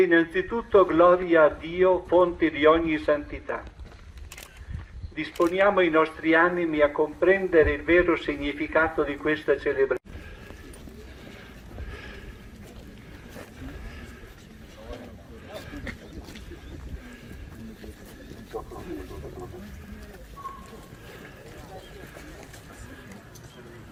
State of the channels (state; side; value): identical; both; correlation 1.00